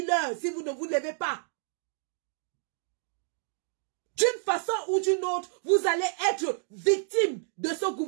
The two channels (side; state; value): left; silent; digital silence